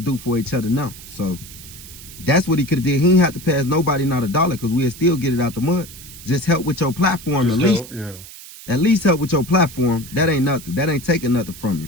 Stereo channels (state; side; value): noise; right; hiss, 16 dB below the sound